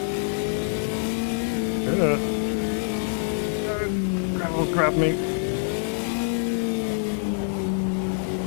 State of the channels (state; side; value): silent; right; 57 dB below the other